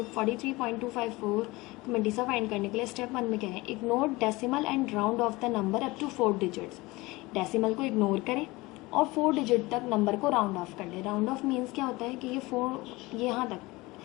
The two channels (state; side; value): quieter; right; 21.8 dB